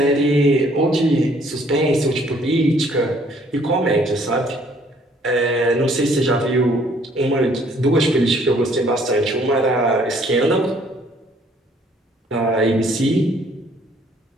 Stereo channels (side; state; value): both; normal; correlation 0.62